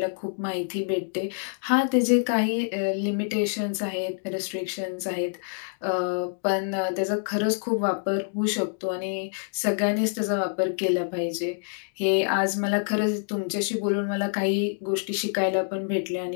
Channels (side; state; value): right; silent; digital silence